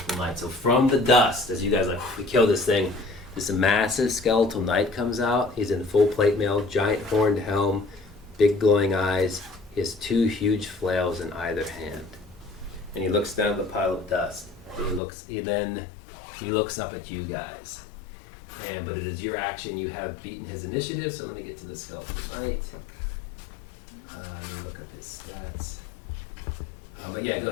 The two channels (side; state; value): right; drops out; at 15.0 s